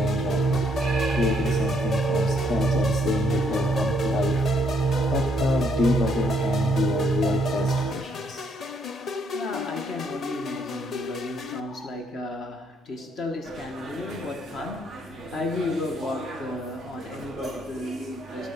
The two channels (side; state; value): both; normal; correlation 0.71